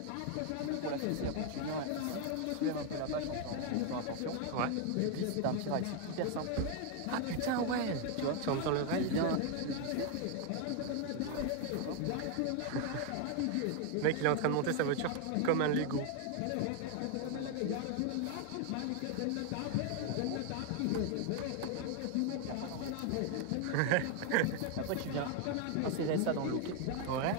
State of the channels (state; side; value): different; both; correlation 0.01